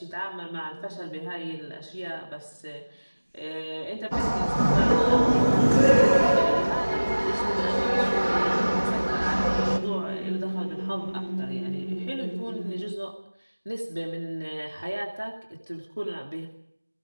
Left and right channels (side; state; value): both; inverted; correlation -1.00